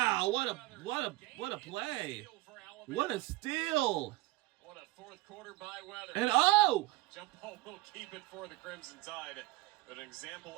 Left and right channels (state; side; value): quieter; left; 19.4 dB